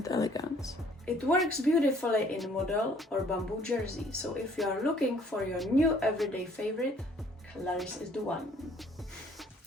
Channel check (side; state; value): both; normal; correlation 0.59